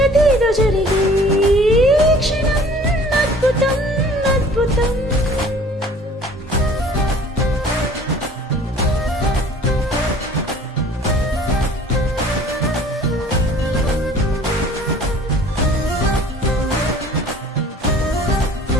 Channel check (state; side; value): normal; both; correlation 0.50